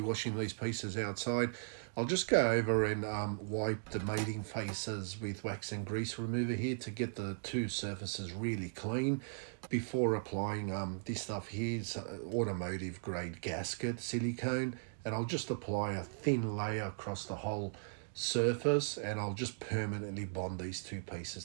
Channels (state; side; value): silent; left; digital silence